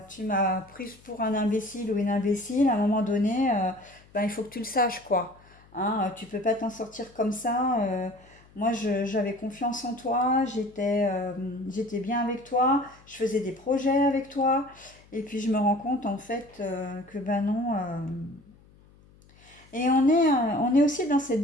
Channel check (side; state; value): left; noise; hum, 27 dB below the sound